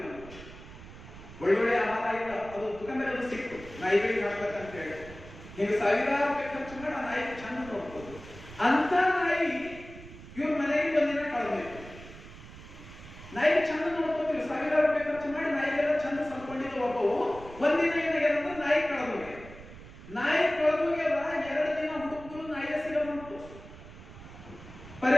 ಒಳ್ಳೊಳ್ಳೆ ಆಹಾರ ಇಲ್ಲ, ಅದು ದುಕಾನ್ದಾಗ ಅದು ಸಿಕ್ತು ನಾಯಿಗಳಿಗೆ ಹಾಕ್ಬೇಕಂತ ಹೇಳಿ ಈಗ ಸಾವಿರಾರು ರೂಪಾಯಿ ಖರ್ಚು ಮಾಡಿ ಆ ನಾಯಿ ಚಂದ ನೋಡ್ಬೋದು. ಅಂತ ನಾಯಿ ಇವ್ರ ಮನೆಗೆ ಒಂದಿನ ಕಳೆದೋಯ್ತು. ನಾಯಿ ಚಂದ ನೋಡ್ಕೋತೀವಿ, ಸಾವಿರಾರು ರೂಪಾಯಿ ಖರ್ಚು ಮಾಡಿ ನಾಯಿಗೆಲ್ಲ ಚಂದ ಸಂಕೊಂಡಿದ್ದು ಒಬ್ಬವು. ಒಂದಿನ ಏನಾಗ್ಯದಂದ್ರೆ ನಾಯಿ ಕಳೆದೋಗ್ಯ. 2 ದಿನ ಹುಡುಕಿದ್ರು ನಾಯಿಯ ಸಿಗಬಂತು.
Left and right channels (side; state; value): right; noise; rumble, 16 dB below the sound